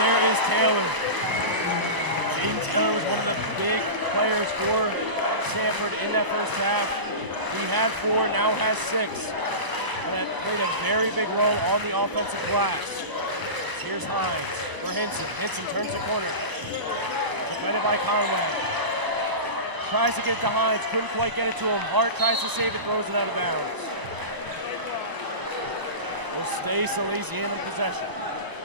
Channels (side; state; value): left; late; 1.0 ms